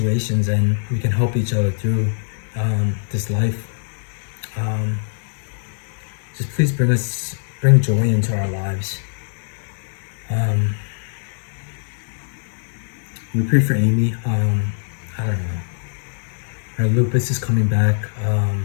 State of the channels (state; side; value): silent; right; 63 dB below the other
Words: and we can help each other through this life. Just please bring joy into our lives. We pray for Amy. I don't know. Her lupus is coming back.